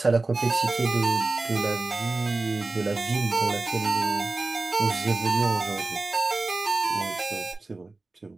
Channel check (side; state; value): left; quieter; 3.3 dB